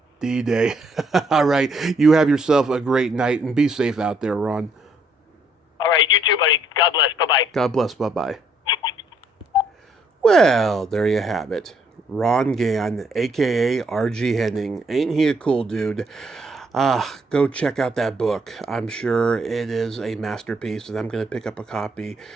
D-Day. All right. You have yourself a great night, and be safe out there, Ron. All right. You too, buddy. God bless. Bye-bye. God bless. Bye-bye. Well, there you have it. Ron Gann, a.k.a. R.G. Henning. Ain't he a cool dude? Go check out that book. I'm sure it is a masterpiece, and I'm going to pick up a copy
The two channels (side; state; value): both; normal; correlation 0.69